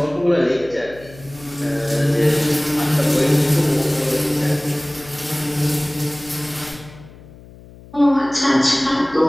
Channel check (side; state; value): left; noise; hum, 21 dB below the sound